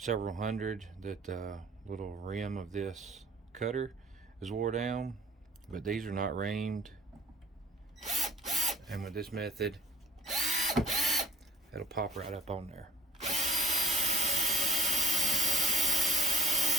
hundred that the little rim of this cutter is wore down, but these are not reamed, and with this method it'll pop right up on there.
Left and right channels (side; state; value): both; normal; correlation 0.53